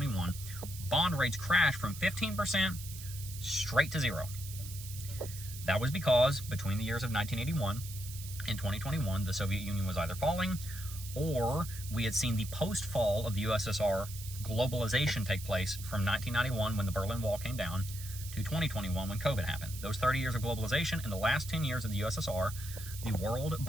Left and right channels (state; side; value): noise; right; hiss, 12 dB below the sound